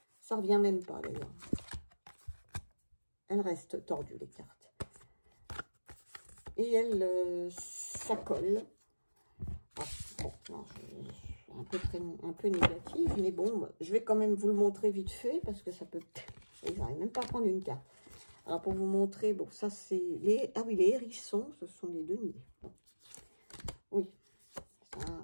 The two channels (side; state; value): both; inverted; correlation -1.00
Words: ça revient même pas d'ailleurs. Elles restent tordues les cartes. Et ça colle. Ah, bon, non, un peu négative, mais bon, je vais quand même vous le montrer vite fait parce que ça peut. J'arrive même pas à prendre une carte. Alors pour vous montrer, bon, ça c'est les. Ah oui, les hérissons, ce sont les deniers. Bon. Oui.